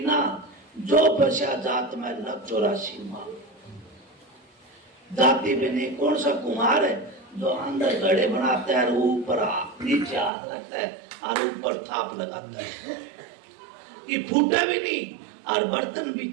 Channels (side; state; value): left; drops out; at 10.3 s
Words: जो बचा जात में लग 84 माल। जाति पे नहीं। कौन सा कुम्हार है जो अंदर घड़े बनाता है, ऊपर नीचे हाथ रखता है और ऊपर थाप लगाता है, ये फूटा भी नहीं और बर्तन भी